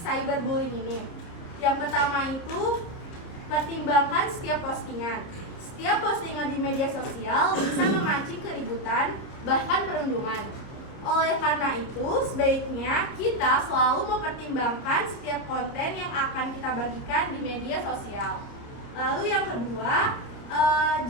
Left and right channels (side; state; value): right; late; 30 ms